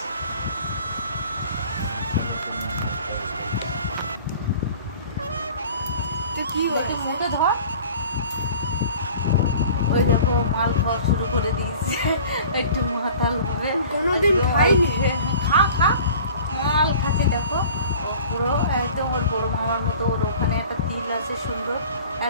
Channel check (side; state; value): both; inverted; correlation -0.45